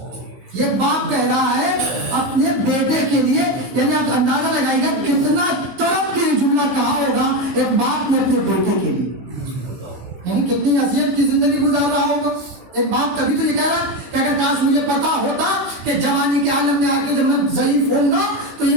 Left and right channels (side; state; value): left; late; 15 ms